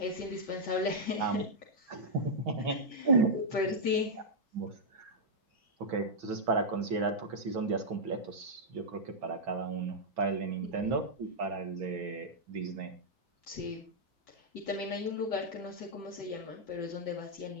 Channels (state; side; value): normal; both; correlation -0.06